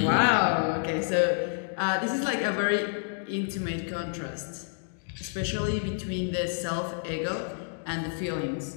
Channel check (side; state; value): right; silent; digital silence